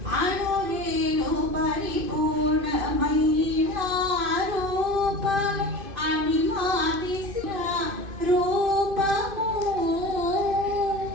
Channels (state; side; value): late; left; 2.5 ms